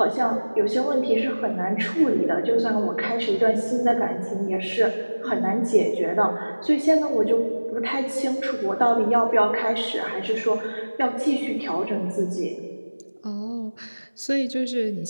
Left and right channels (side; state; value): both; inverted; correlation -1.00